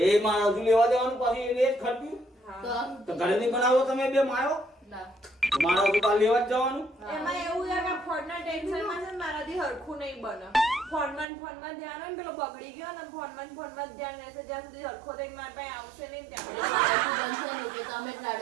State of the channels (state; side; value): drops out; left; at 11.2 s